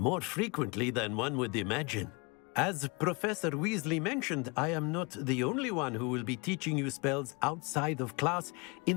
frequently than one would imagine. As Professor Weasley mentioned, I am not the only one who will be teaching you spells outside of class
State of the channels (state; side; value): quieter; right; 29.5 dB